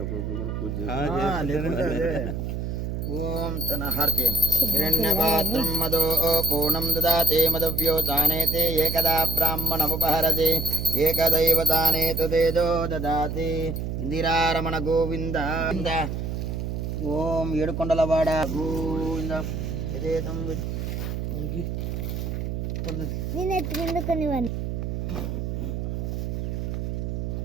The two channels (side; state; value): right; noise; hum, 3 dB below the sound